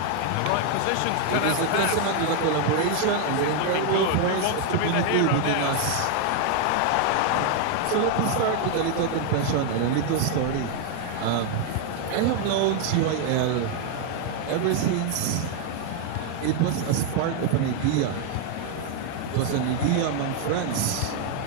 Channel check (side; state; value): both; different; correlation 0.01